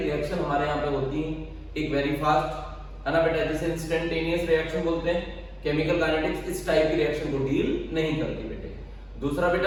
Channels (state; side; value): identical; both; correlation 1.00